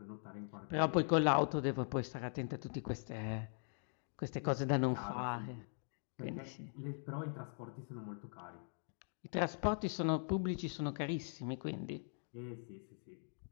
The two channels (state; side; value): silent; right; digital silence